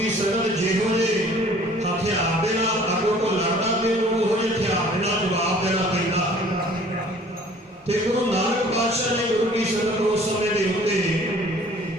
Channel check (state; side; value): normal; both; correlation 0.52